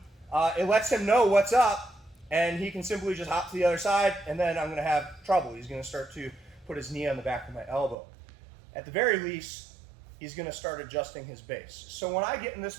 it lets him know what's up, and he can simply just hop to the other side, and then I'm gonna have trouble. He's gonna start to put his knee on the back of my elbow. At the very least, he's going to start adjusting his base. So when I get in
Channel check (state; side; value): drops out; left; at 8.0 s